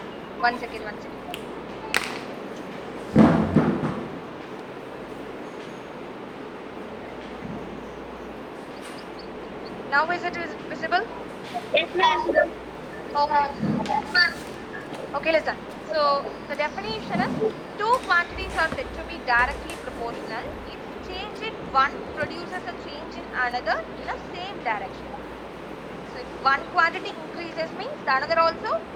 One second, one second. Now is it visible? Yes, ma'am. Okay. Okay, listen. So the definition is two quantities are said to be directly proportional if change in one produces a change in another in a same direction. So if one quantity increases means the another also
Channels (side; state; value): both; identical; correlation 1.00